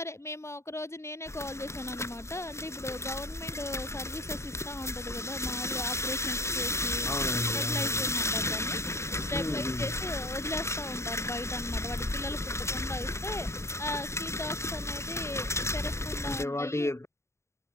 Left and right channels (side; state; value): right; late; 0.13 ms